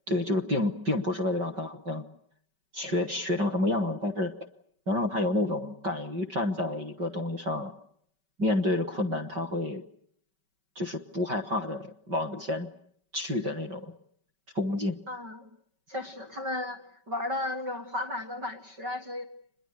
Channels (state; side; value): late; left; 5.2 ms